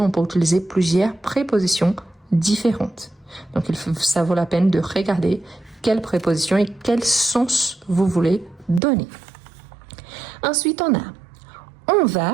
peut utiliser plusieurs prépositions différentes. Donc, ça vaut la peine de regarder quelle préposition et quel sens vous voulez donner. Ensuite, on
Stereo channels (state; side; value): drops out; left; at 8.8 s